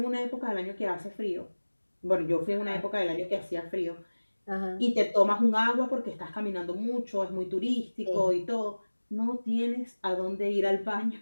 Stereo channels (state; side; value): inverted; both; correlation -1.00